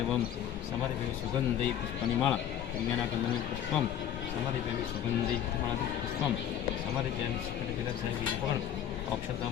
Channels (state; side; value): quieter; right; 10.0 dB